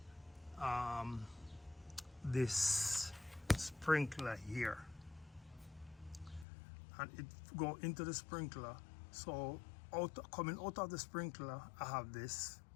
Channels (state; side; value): drops out; right; at 6.5 s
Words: this sprinkler here, and it go into the sprinkler. So coming out of the sprinkler, I have this